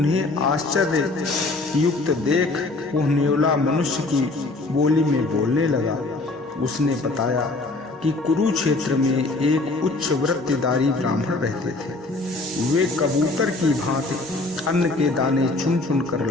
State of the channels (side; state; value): right; quieter; 3.2 dB